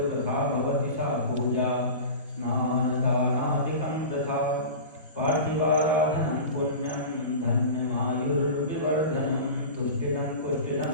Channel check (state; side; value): inverted; both; correlation -0.32